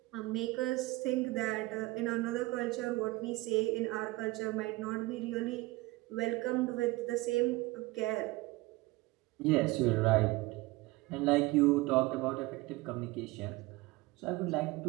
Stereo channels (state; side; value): quieter; left; 21.2 dB